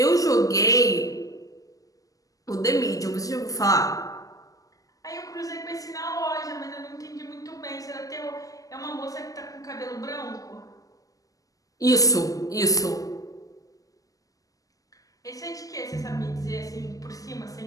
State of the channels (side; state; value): right; late; 0.17 ms